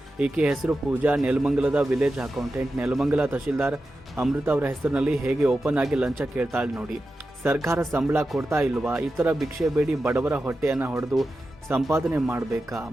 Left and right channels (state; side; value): normal; both; correlation 0.91